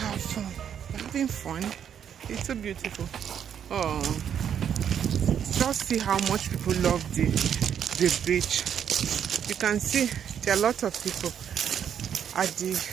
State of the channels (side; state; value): left; quieter; 8.6 dB